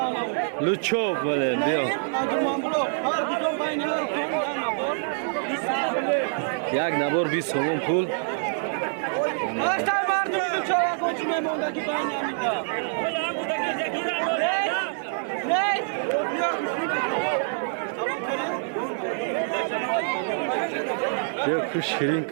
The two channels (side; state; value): left; silent; digital silence